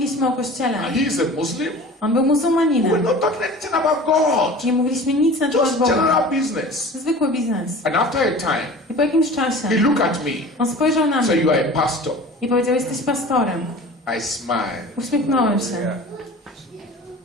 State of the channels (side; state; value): both; normal; correlation 0.40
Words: o kościele. And he is a Muslim. On był We were muzułmaninem. not talking anything about God. Nie mówiliśmy nic na temat Just Boga. general business. Zwykły biznes. And after a time, I po jakimś czasie he looked at me. on spojrzał na So mnie you are a pastor. i powiedział, jesteś pastorem. I smiled. Uśmiechnąłem się.